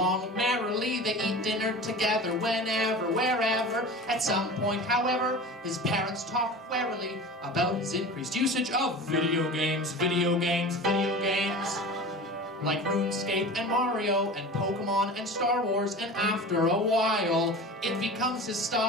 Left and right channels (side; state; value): both; normal; correlation 0.34